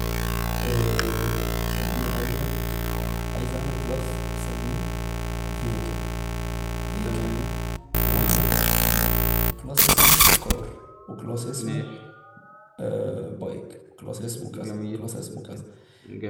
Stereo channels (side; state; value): both; identical; correlation 1.00